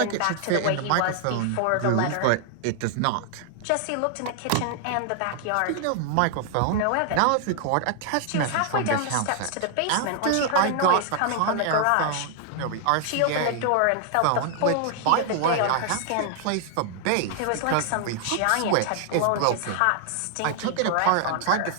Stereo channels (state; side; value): different; both; correlation 0.00